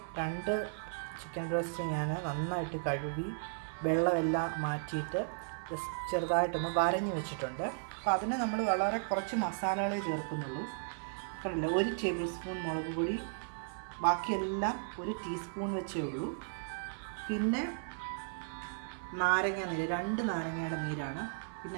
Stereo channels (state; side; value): silent; left; 54 dB below the other